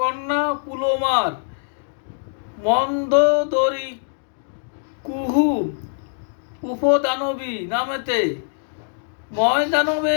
কন্যা পুলোমার। মন্দোদরী কুহু উপদানবী নামেতে,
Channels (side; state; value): right; silent; digital silence